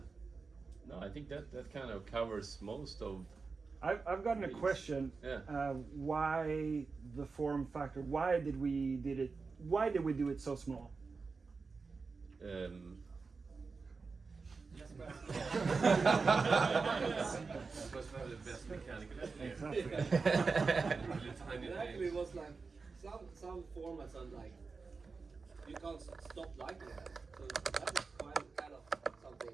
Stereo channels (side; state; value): left; quieter; 4.5 dB